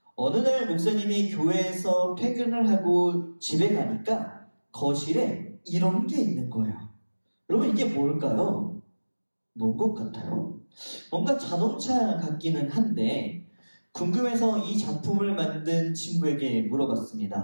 어느 날 목사님이 교회에서 퇴근을 하고 집에 가니까 거실에 이런 게 있는 거예요. 여러분 이게 뭘까요? 뭔 것 같아요? 뭔가 자동차 같기는 한데 궁금해서 이 작품을 만든 친구에게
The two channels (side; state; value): both; inverted; correlation -1.00